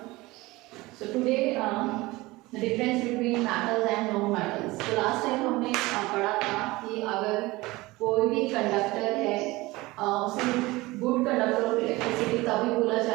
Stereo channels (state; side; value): quieter; left; 20.8 dB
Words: So today the difference between metals and non-metals. So last time हमने पढ़ा था कि अगर कोई भी कंडक्टर है उसे गुड कंडक्टर ऑफ इलेक्ट्रिसिटी तभी बोला